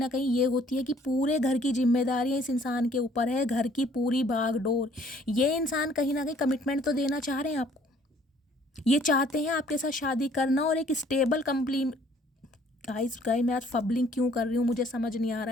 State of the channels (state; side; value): normal; both; correlation 0.60